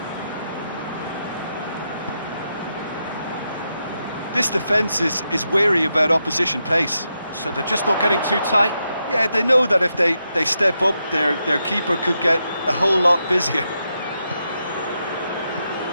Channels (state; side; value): inverted; both; correlation -0.85